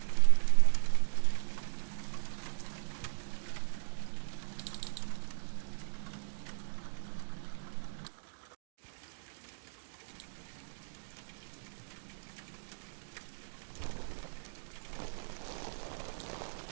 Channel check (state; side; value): silent; left; digital silence